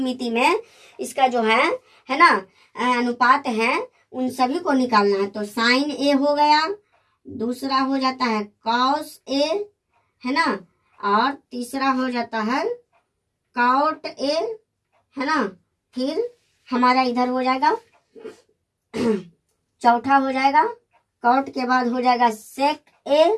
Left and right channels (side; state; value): both; identical; correlation 1.00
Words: में इसका जो है ना अनुपात है उन सभी को निकालना है। तो साइन ए हो गया, दूसरा हो जाता है कॉस ए, है ना, और तीसरा हो जाता है कॉट ए, है ना, फिर हमारा इधर हो जाएगा चौथा हो जाएगा कॉट के बाद हो जाएगा सेक ए,